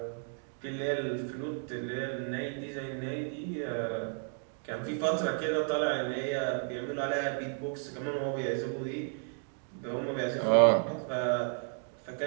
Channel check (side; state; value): left; silent; 55 dB below the other